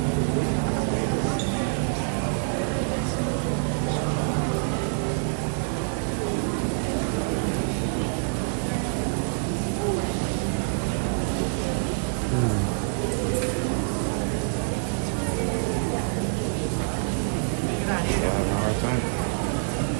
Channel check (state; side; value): silent; left; 57 dB below the other